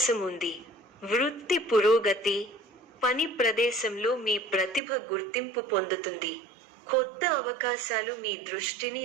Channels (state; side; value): drops out; left; at 4.8 s